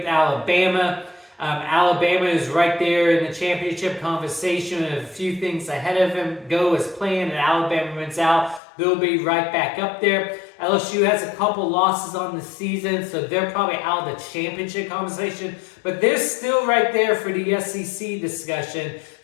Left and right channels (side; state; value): right; drops out; at 8.6 s